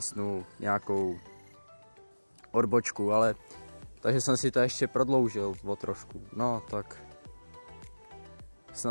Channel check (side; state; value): both; inverted; correlation -1.00